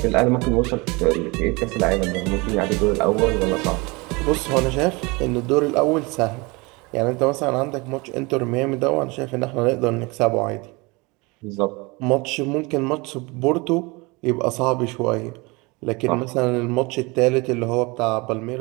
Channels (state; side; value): quieter; left; 26.0 dB